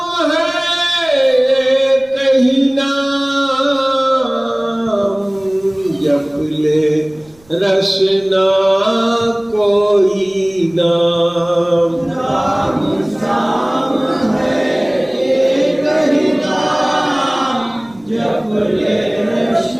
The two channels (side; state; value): right; noise; rumble, 30 dB below the sound